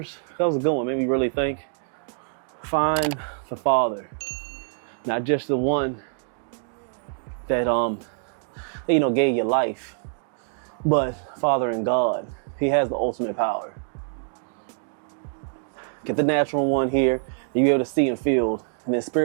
that was a good one. Made me really think. Find the Father, not just the one that gave you life, but Father and God. He has the ultimate power. Get the natural one here, you be able to see and feel, and then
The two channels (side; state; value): left; silent; digital silence